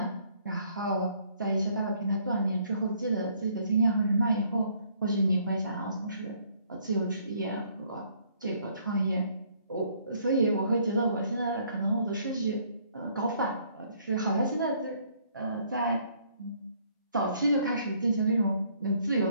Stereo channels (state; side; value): inverted; both; correlation -0.65